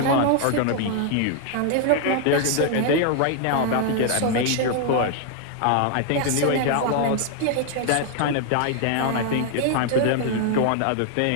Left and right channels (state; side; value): different; both; correlation 0.00